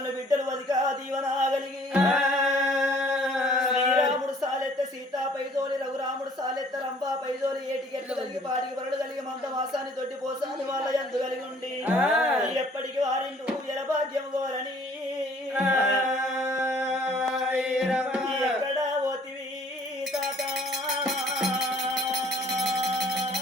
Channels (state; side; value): normal; both; correlation 0.57